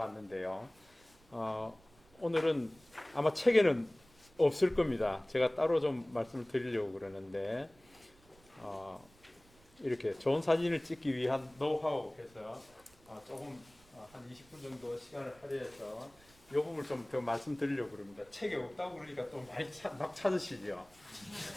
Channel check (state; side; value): noise; right; rumble, 28 dB below the sound